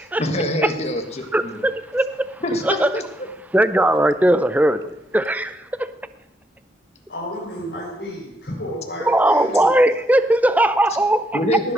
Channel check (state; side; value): normal; both; correlation 0.76